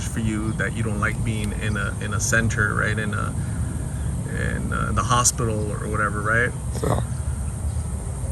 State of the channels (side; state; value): both; identical; correlation 1.00